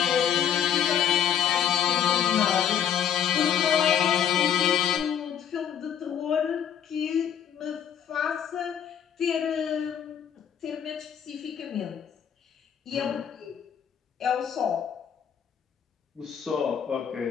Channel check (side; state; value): right; quieter; 9.0 dB